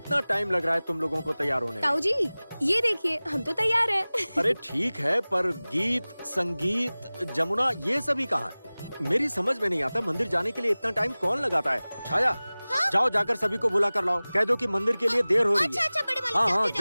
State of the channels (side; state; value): both; inverted; correlation -0.99